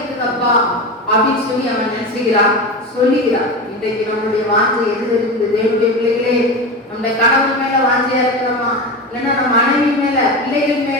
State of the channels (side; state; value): both; normal; correlation 0.24